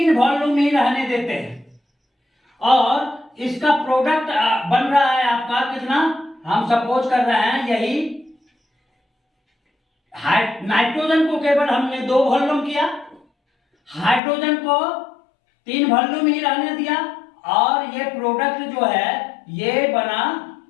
वॉल्यूम ही रहने देते हैं, और इसका प्रोडक्ट बन रहा है आपका कितना, हम सपोज कर रहे हैं यही नाइट्रोजन को केवल हमने 2 वॉल्यूम किया, हाइड्रोजन को 3 वॉल्यूम ही रहने दिया, और ये प्रोडक्ट जो है ये बना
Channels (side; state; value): right; drops out; at 14.2 s